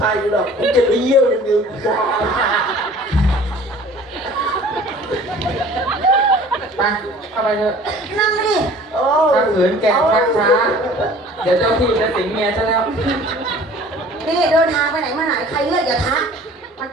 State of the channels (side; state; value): both; normal; correlation 0.48